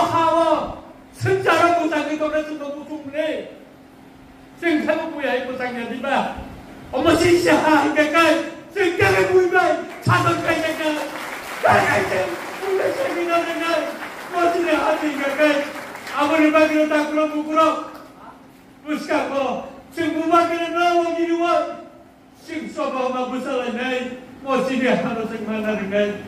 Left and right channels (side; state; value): both; identical; correlation 1.00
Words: hawa. Sejarah pusang itu dah sudah busuk ni. Sejarah punya pusang jadi bah. Omo sisa ikai. Sejarah punya cadang kaya kaya. Kaya kaya. Punya seminar dengan. Masih ada ikai. Awal bagi tak keluar bukurok. Puska ko. Semua kena nawa jiwa. Sing soba mabusala nai. Masih harus semana dengan.